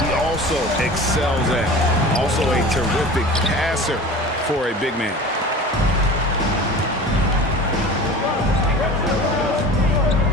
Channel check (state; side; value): normal; both; correlation 0.38